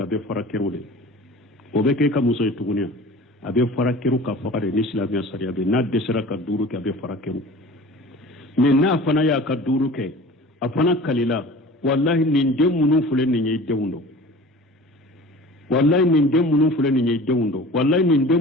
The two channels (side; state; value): both; normal; correlation 0.41